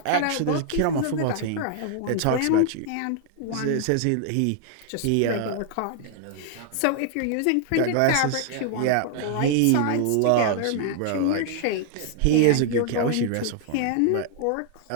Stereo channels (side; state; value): both; different; correlation 0.00